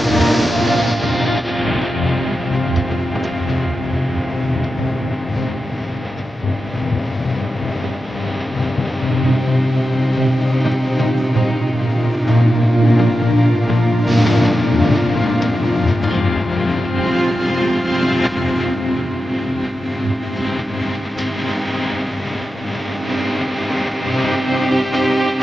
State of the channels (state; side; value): normal; both; correlation 0.91